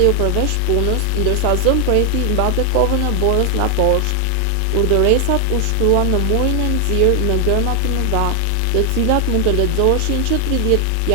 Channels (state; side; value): different; both; correlation 0.00